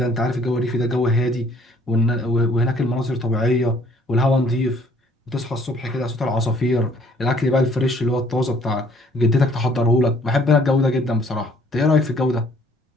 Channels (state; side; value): normal; both; correlation 0.60